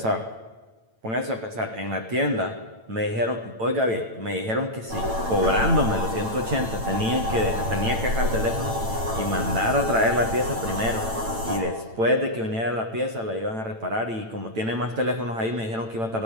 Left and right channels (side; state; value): left; late; 9.0 ms